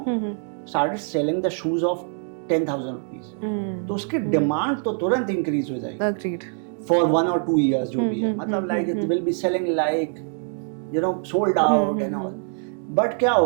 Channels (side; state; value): left; silent; 56 dB below the other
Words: started selling the shoes of 10,000 रुपीज, तो उसकी डिमांड तो तुरंत इंक्रीज हो जाएगी फॉर 1 or 2 years जो भी है. मतलब like it will be selling like, you know, sold out and all. But क्या